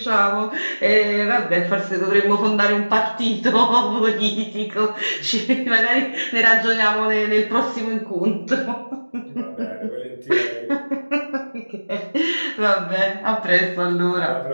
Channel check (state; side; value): inverted; both; correlation -1.00